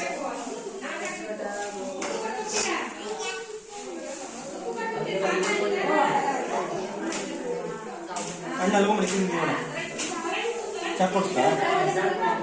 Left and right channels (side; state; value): both; identical; correlation 1.00